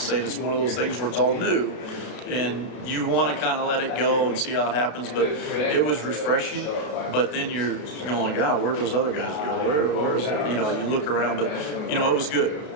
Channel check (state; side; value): late; right; 32 ms